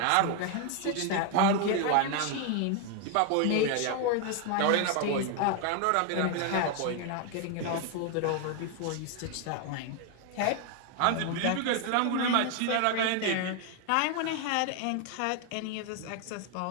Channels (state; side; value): different; both; correlation 0.01